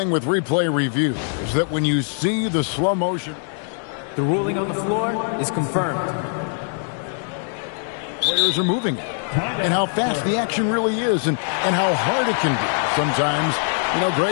with replay review is that when you see the slow motion, the ruling on the floor is confirmed. Players are moving, and how fast the action really is, and how hard it can be sometimes,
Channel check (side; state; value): right; silent; 56 dB below the other